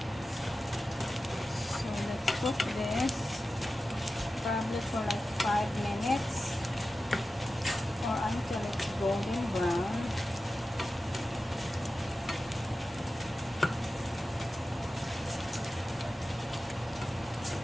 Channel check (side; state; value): both; normal; correlation 0.94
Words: So let's cook this probably for like 5 minutes or until it's golden brown.